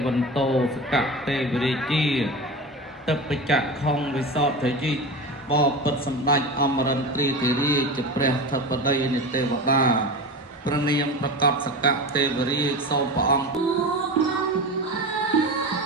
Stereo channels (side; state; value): both; normal; correlation 0.27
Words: វន្តោសកទេវរាជាទឹកបច្ចៈខុងវិសោធយិបបិទ្ធសម្ដេចអមរិន្ទ្រាធិរាជជាព្រះធិបតីនៃទេវតាព្រះនាមប្រកបសកទេវរាជសូមព្រះអង្គ